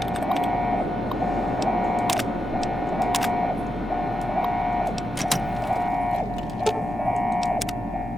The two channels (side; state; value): both; normal; correlation 0.87